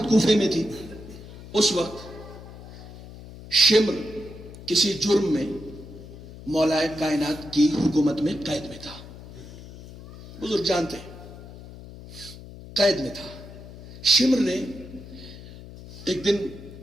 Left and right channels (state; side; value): noise; left; hum, 15 dB below the sound